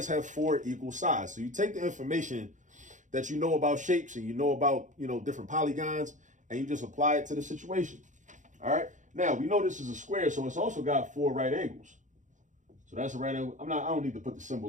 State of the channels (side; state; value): left; late; 0.36 ms